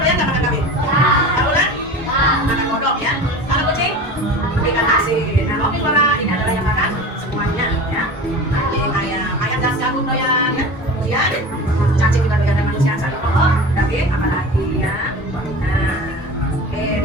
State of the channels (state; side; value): normal; both; correlation 0.34